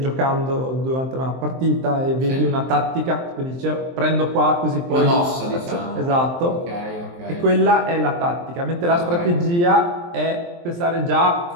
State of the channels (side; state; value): left; late; 23 ms